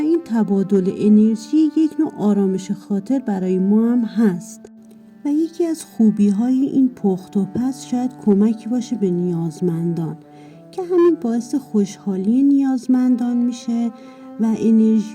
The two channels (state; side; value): identical; both; correlation 1.00